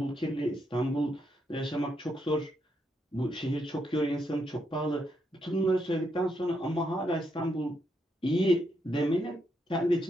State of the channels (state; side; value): normal; both; correlation 0.79